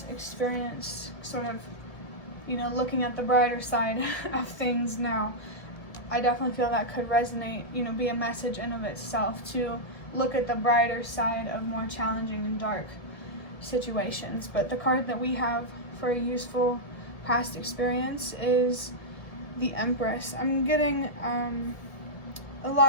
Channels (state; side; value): late; right; 1.6 ms